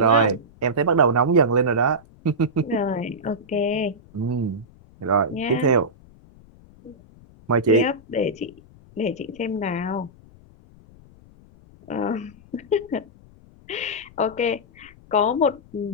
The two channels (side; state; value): left; noise; rumble, 25 dB below the sound